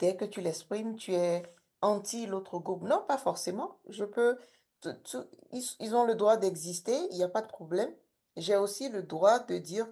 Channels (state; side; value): identical; both; correlation 1.00